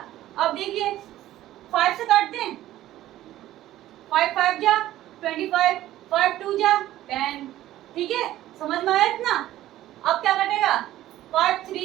अब देखिए 5 से काट दें, 5 5 जा 25, 5 2 जा 10। ठीक है, समझ में आया इतना। अब क्या कटेगा, 5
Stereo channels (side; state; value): left; quieter; 14.2 dB